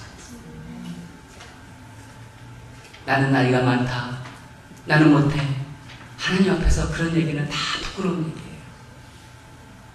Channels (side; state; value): both; identical; correlation 1.00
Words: 나는 나이가 많다, 나는 못해, 하나님 앞에서 그런 얘기는 다 부끄러운 얘기예요.